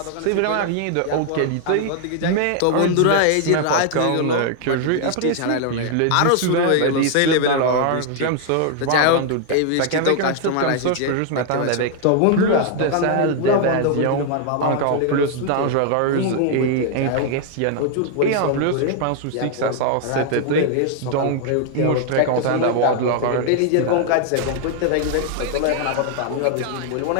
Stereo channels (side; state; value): both; different; correlation 0.00